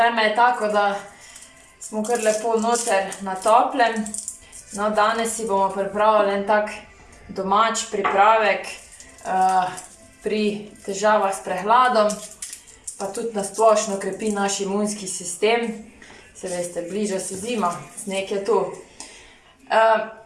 je tako, da smo kar lepo noter na toplem. No, danes si bomo pripravili en tak domač pripravek pri težavah s prehladom, pa tudi na splošno krepi naš imunski sistem. Se veste, bliža se zima, sneg je tu.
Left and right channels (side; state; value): both; identical; correlation 1.00